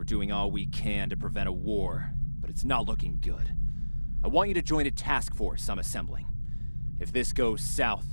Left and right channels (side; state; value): both; inverted; correlation -1.00